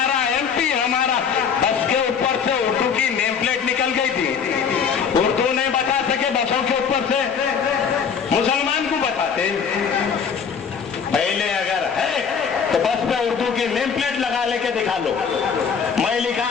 एमपी हमारा। बस के ऊपर से उर्दू की नेम प्लेट निकल गई थी, उर्दू नहीं बता सके बसों के ऊपर से, मुसलमान को बताते। पहले अगर है तो बस पे उर्दू की नेम प्लेट लगा लेके दिखा लो, मैं लिखा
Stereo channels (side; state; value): right; quieter; 6.6 dB